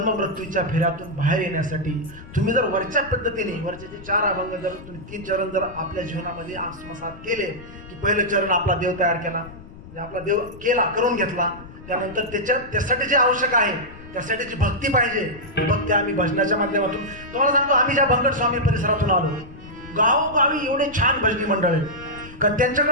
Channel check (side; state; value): left; noise; rumble, 17 dB below the sound